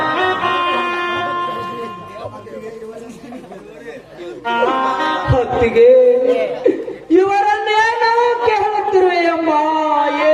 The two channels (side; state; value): both; identical; correlation 1.00